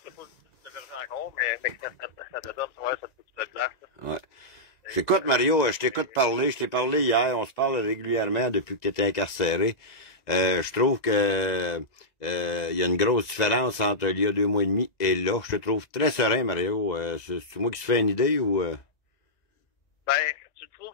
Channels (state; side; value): late; right; 1.9 ms